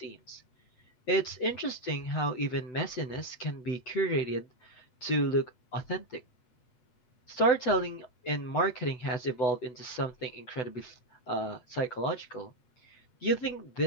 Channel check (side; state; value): right; late; 8.0 ms